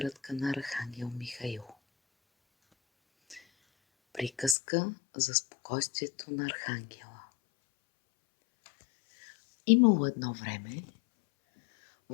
на Архангел Михаил. Приказка за спокойствието на Архангела. Имало едно време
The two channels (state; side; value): drops out; right; at 4.5 s